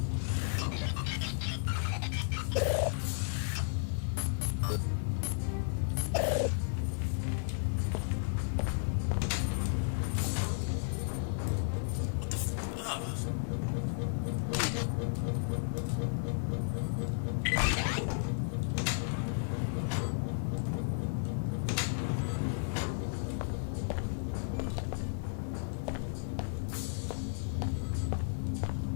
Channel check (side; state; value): right; silent; digital silence